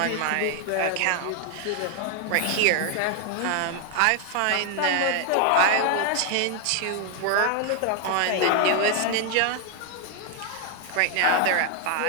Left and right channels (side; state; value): both; different; correlation 0.00